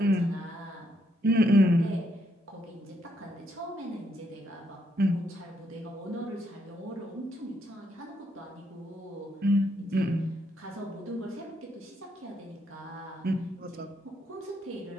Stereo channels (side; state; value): both; normal; correlation 0.75